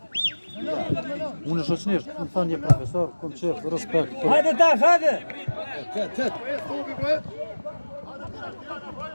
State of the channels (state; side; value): inverted; both; correlation -1.00